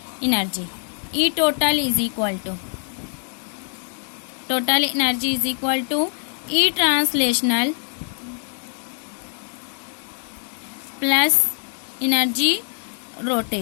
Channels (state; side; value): silent; right; 63 dB below the other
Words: energy, e total is equal to, total energy is equal to e translational plus energy